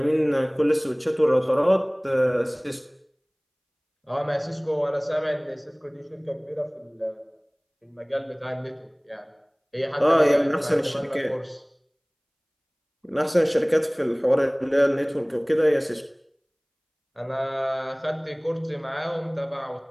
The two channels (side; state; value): both; identical; correlation 1.00